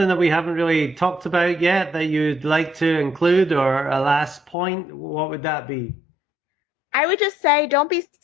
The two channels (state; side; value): drops out; right; at 4.5 s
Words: that we haven't really talked about yet that you'd like to include, or a last point, what would that be? I would just say, don't be